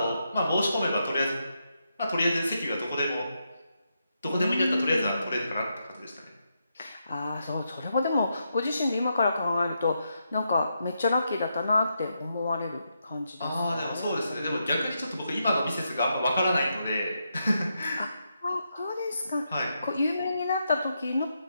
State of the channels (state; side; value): inverted; both; correlation -0.83